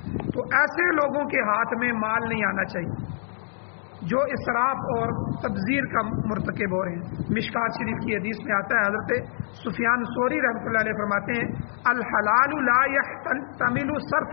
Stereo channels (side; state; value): right; silent; digital silence